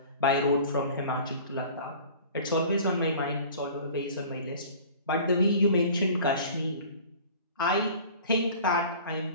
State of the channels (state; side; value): inverted; both; correlation -0.44